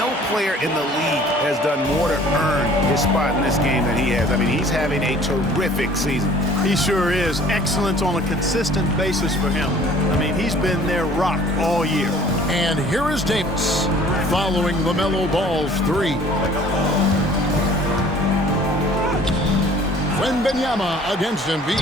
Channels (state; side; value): normal; both; correlation 0.52